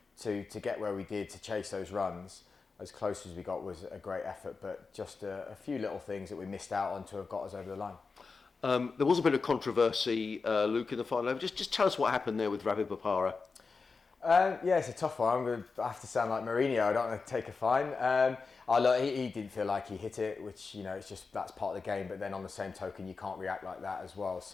to get where we did, to chase those runs, as close as we got, was a great effort, but just a few little things that we missed out on to have got us over the line. There was a bit of controversy, Luke, in the final over. Just tell us what happened there with Ravi Bopara. It's a tough one. I'm going to have to sound like Mourinho. I don't want to take a fine. Look, he didn't feel like he hit it, which, it's just, that's part of the game. But then on the same token, you can't react like that as well.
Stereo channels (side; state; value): right; quieter; 4.5 dB